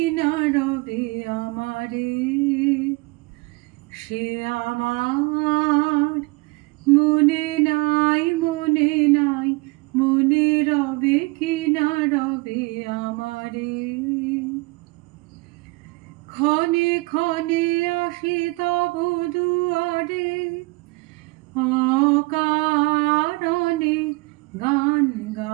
না রবে আমারে, সে আমার মনে নাই, মনে নাই, মনে রবে কি না রবে আমারে। ক্ষণে ক্ষণে আসি তব দুয়ারে, অকারণে গান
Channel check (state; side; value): quieter; left; 25.6 dB